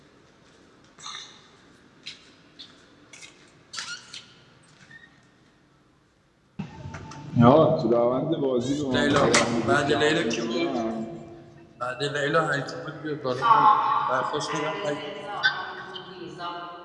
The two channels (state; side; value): identical; both; correlation 1.00